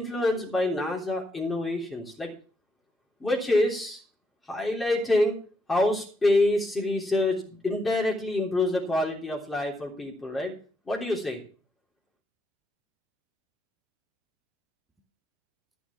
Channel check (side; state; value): both; normal; correlation 0.80